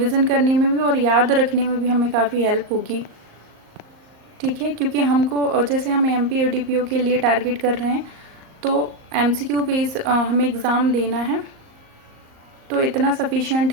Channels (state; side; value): late; left; 38 ms